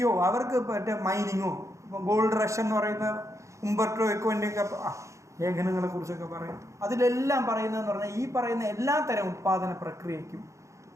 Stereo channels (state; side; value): late; left; 0.15 ms